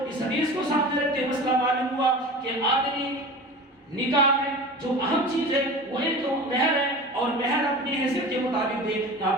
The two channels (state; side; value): normal; both; correlation 0.35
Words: اس حدیث کو سامنے رکھتے مسئلہ معلوم ہوا کہ آدمی نکاح میں جو اہم چیز ہے وہ ایک تو مہر ہے، اور مہر اپنی حیثیت کے مطابق دے.